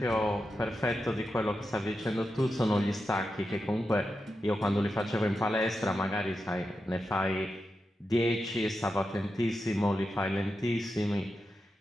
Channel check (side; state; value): both; normal; correlation 0.88